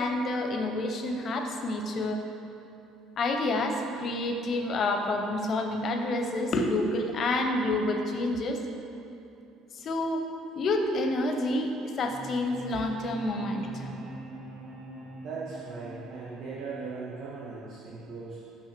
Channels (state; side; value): normal; both; correlation 0.65